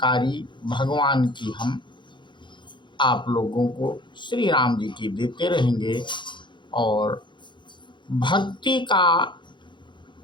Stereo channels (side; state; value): right; late; 0.23 ms